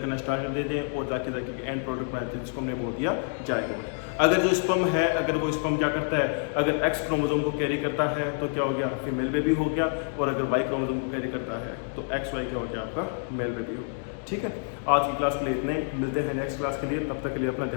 करना स्टार्ट कर देते हैं, और जाके एंड प्रोडक्ट बनाते हैं, जिसको हमने बोल दिया जाएगा। अगर जो स्पर्म है, अगर वो स्पर्म क्या करता है, अगर एक्स क्रोमोसोम को कैरी करता है तो क्या हो गया, फीमेल बेबी हो गया, और अगर वाई क्रोमोसोम को कैरी करता है तो एक्स वाई क्या हो गया, आपका मेल बेबी हो गया। ठीक है, आज की क्लास के लिए इतने, मिलते हैं नेक्स्ट क्लास के लिए, तब तक के लिए अपना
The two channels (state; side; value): silent; right; 60 dB below the other